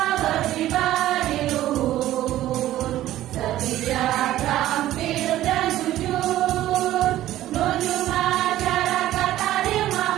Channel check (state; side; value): quieter; left; 14.0 dB